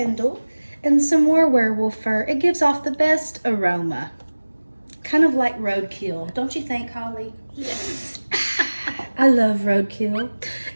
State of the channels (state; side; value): inverted; both; correlation -1.00